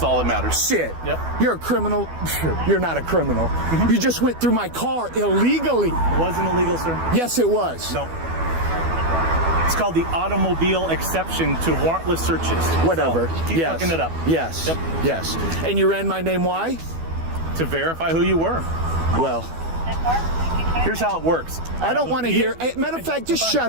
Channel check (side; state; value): left; late; 12 ms